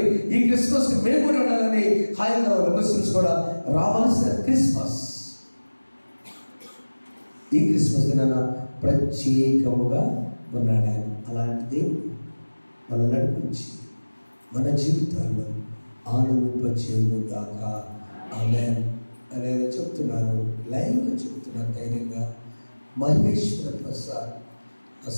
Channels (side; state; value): both; inverted; correlation -1.00